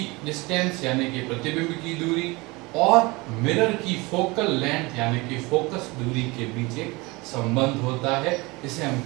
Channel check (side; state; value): left; quieter; 24.2 dB